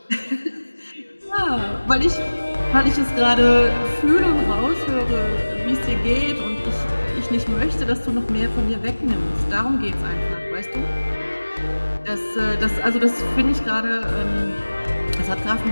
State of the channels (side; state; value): both; inverted; correlation -1.00